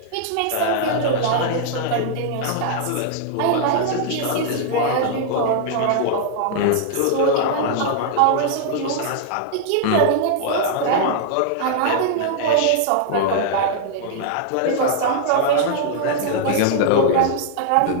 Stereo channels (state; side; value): different; both; correlation -0.01